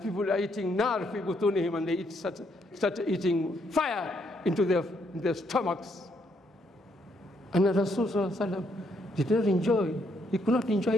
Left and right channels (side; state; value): both; normal; correlation 0.73